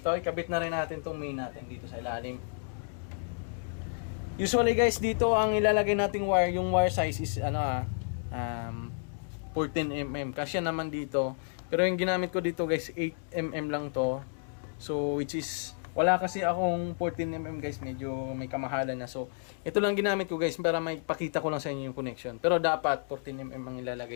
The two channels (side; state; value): right; silent; digital silence